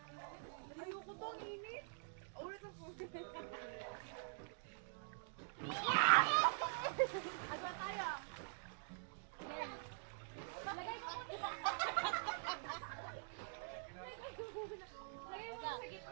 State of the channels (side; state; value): left; silent; digital silence